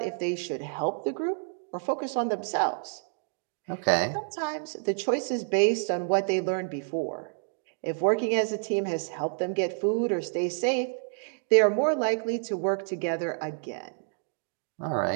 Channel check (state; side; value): silent; left; 59 dB below the other